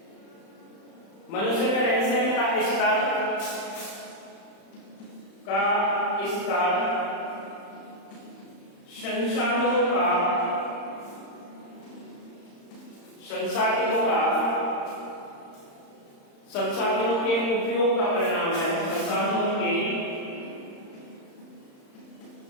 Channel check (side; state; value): right; late; 35 ms